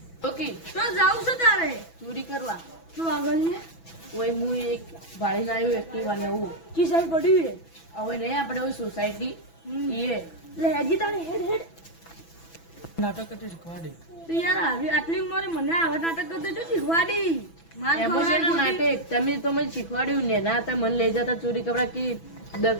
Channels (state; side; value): late; right; 6.0 ms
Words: ઓકે તો જાવ છો તારે ચોરી કરવા તો આગળ ને ઓય હું એક ભાડીને આવ્યો એક્ટિવા નવું કી સાઈડ પડ્યું હે હવે નહીં આપણે ઓય સોસાયટી એ લે હેજી તારે હેડ હેડ નાટક કરતી શીખવાડે તો યાર આવી આટલી ઉંમરે મને આવા નાટક કરતો તો શીખવાડી માર એમાં છે ને નાટક તમે તો મને શીખવાડ્યું ને ના તમે મને લઈ જતા ચોરી કરવા કે